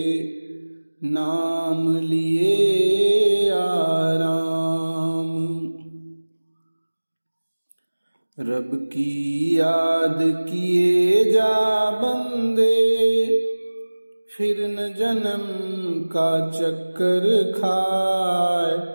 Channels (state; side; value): inverted; both; correlation -1.00